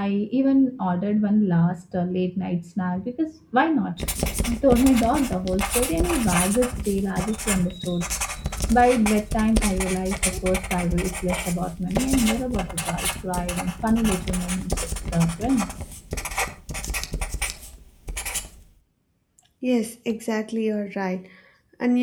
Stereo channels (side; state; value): both; identical; correlation 1.00